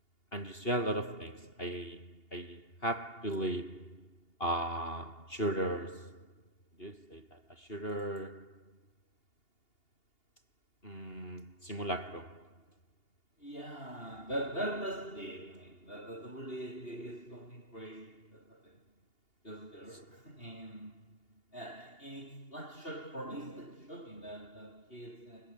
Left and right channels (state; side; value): late; right; 2.8 ms